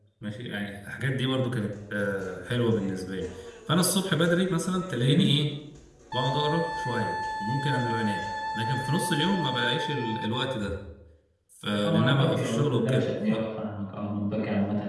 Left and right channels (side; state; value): both; identical; correlation 1.00